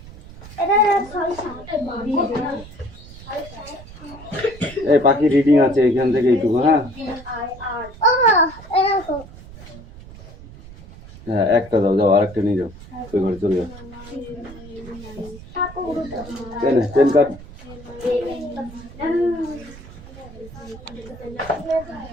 এই পাখি রিডিং আছে এখান থেকে এইটুকু হ্যাঁ হ্যাঁ একটা দাও যাও আরেকটা নিয়ে যাও ওই ঘরে চলে যাও এনে পেন কার্ড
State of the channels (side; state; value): right; noise; rumble, 17 dB below the sound